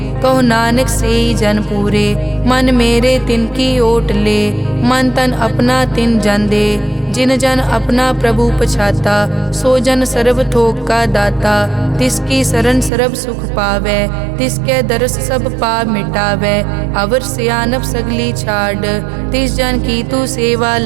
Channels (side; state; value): left; drops out; at 12.9 s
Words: कहो नानक से ही जन पूरे, मन मेरे तिनकी ओट ले, मन तन अपना तिन जन दे, जिन जन अपना प्रभु पछाता, सो जन सर्व थोक का दाता, तिसकी शरण सर्व सुख पावे, तिसके दरस सब पाप मिटावे, अवर सियानप सगली छाड़, तिस जन की तू सेवा